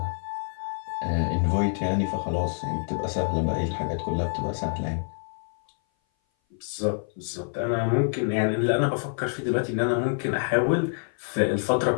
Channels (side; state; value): right; silent; 57 dB below the other